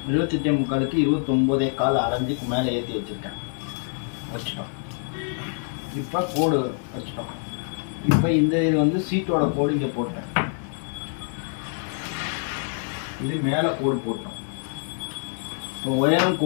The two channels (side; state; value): right; silent; 61 dB below the other